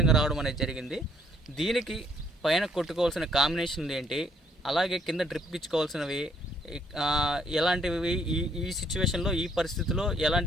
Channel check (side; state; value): both; normal; correlation 0.67